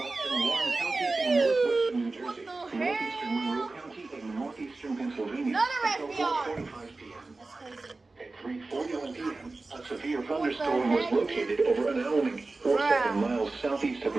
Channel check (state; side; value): quieter; left; 3.4 dB